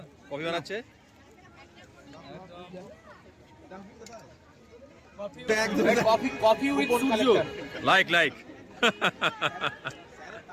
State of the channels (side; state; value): both; identical; correlation 1.00